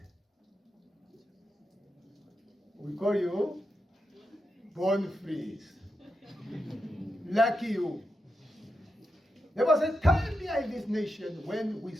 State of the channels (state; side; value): normal; both; correlation 0.87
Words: We call you born freeze. Lucky you. There was a time here in this nation when we